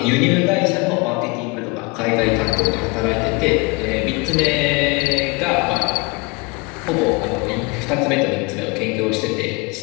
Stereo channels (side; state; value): right; quieter; 27.9 dB